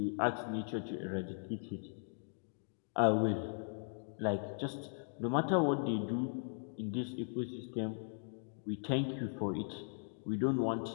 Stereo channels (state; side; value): silent; right; digital silence